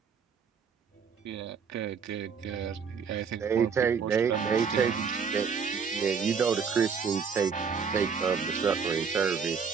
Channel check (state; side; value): quieter; left; 6.2 dB